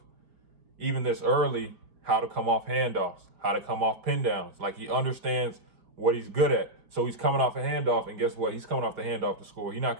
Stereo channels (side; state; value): left; late; 5.0 ms